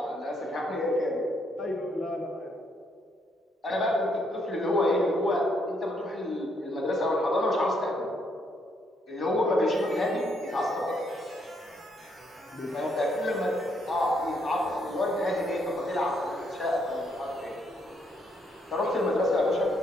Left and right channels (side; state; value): both; normal; correlation 0.73